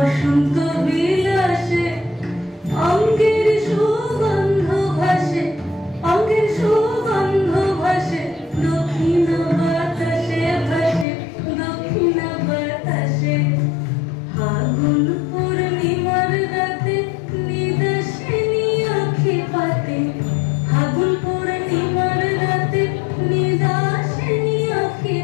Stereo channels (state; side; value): drops out; right; at 11.1 s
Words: বিলাসে অঙ্গের সুগন্ধ ভাসে, অঙ্গের সুগন্ধ ভাসে, দক্ষিণ বাতাসে ভাসে, দক্ষিণ বাতাসে। ফাগুন পূর্ণিমার রাতে নিদাসিনী আঁখি পাতে, ফাগুন পূর্ণিমার রাতে নিদাসিনী আঁখি